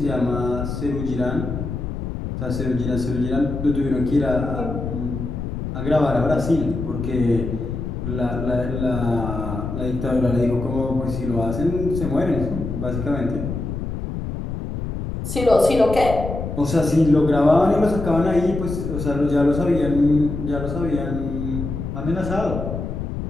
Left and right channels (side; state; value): left; noise; rumble, 5 dB below the sound